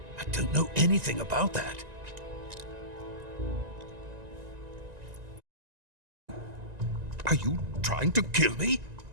I don't know anything about that. Are you trying to kill me?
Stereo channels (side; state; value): left; late; 1.9 ms